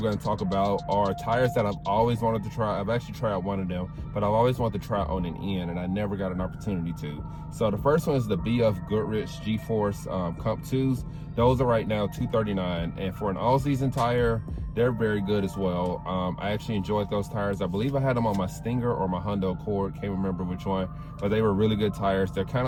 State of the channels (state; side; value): identical; both; correlation 1.00